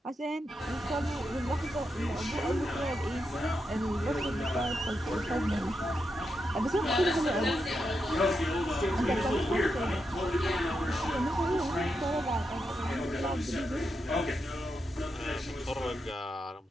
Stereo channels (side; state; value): both; normal; correlation 0.85